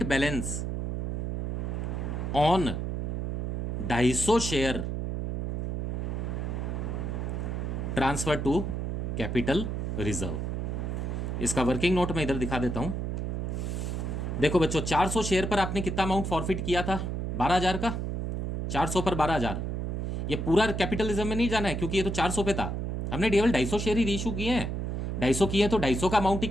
balance on 250 share transfer to capital reserve. इसका वर्किंग नोट मैं इधर दिखा देता हूं। देखो बच्चों, 400 शेयर पर आपने कितना अमाउंट फॉरफिट किया था? 12,000 का। 400 पर 12,000, ये पूरा कैपिटलिज्म में नहीं जाना है क्योंकि ये तो 400 पे था। हमने केवल 250 शेयर ही रीइशू किए हैं, 250 किए हैं तो 250 का अमाउंट ही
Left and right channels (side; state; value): right; noise; hum, 2 dB below the sound